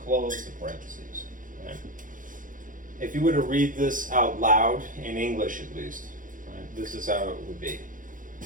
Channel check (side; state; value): left; late; 0.39 ms